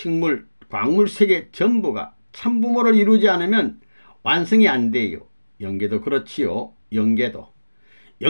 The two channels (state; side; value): inverted; both; correlation -1.00